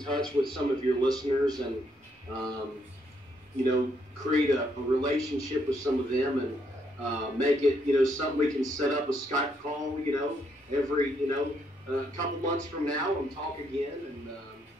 with some of your listeners and create a relationship with some of them and make it something we can set up a Skype call every a couple months from now and talk again and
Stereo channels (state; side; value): normal; both; correlation 0.74